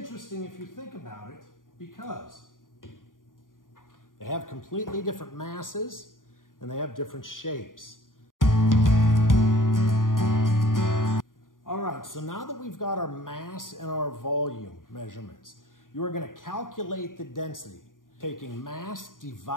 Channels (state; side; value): late; right; 0.89 ms